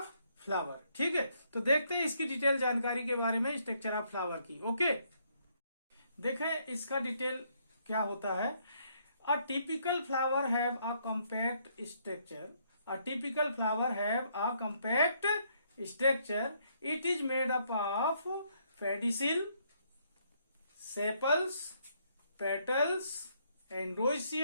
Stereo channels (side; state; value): both; inverted; correlation -0.71